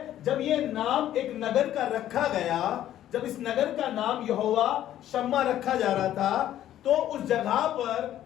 जब ये नाम एक नगर का रखा गया, जब इस नगर का नाम यहोवा शम्मा रखा जा रहा था, तो उस जगह पर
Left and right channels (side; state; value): right; quieter; 12.2 dB